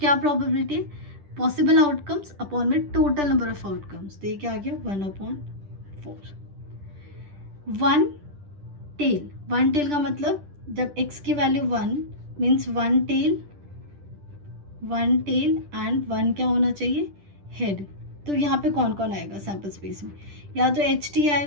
प्रोबेबिलिटी है, पॉसिबल आउटकम्स अपॉन में टोटल नंबर ऑफ आउटकम्स. तो ये क्या आ गया, 1/4. 1 टेल का मतलब जब x की वैल्यू 1 मीन्स 1 टेल एंड 1 क्या होना चाहिए, हेड. तो यहाँ पे कौन कौन आएगा सैम्पल स्पेस में, या तो HT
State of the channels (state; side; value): late; left; 10 ms